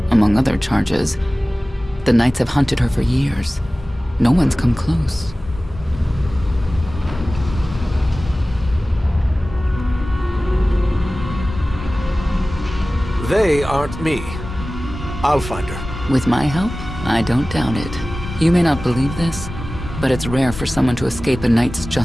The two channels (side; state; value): both; normal; correlation 0.97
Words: among other charges. The Knights have hunted her for years. No one's come close. They aren't me. I'll find her. With my help, I don't doubt it. You may not believe this, but it's rare for someone to escape a knight's